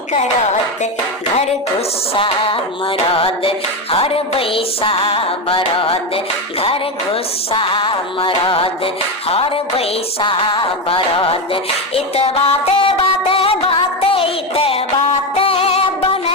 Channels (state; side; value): normal; both; correlation 0.13